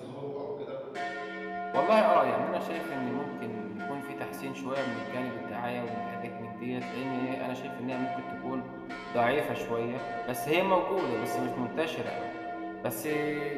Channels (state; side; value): identical; both; correlation 1.00